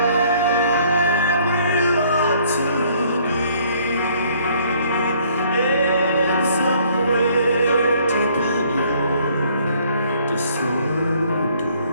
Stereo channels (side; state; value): both; inverted; correlation -0.62